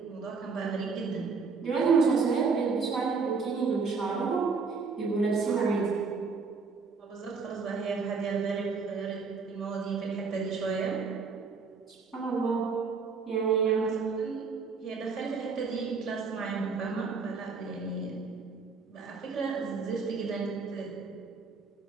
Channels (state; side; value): quieter; left; 4.9 dB